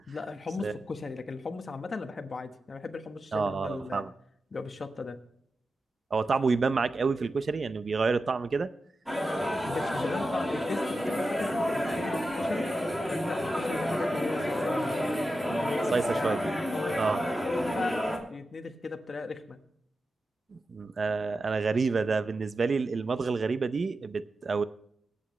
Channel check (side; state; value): both; normal; correlation 0.91